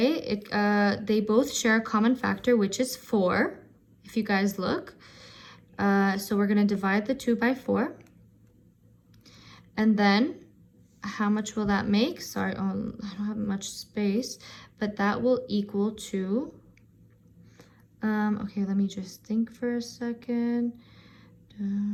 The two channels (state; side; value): identical; both; correlation 1.00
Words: They both share a common factor, which is 4, if you guys look. So we're going to divide the 2 by 4. And then, how much will that make? Sorry, I don't have much space, but that will equal to, okay, let me just think for a second.